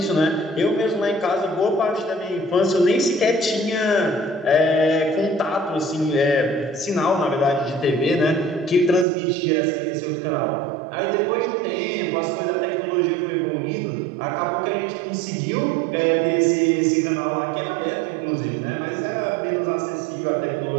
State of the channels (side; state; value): left; drops out; at 9.1 s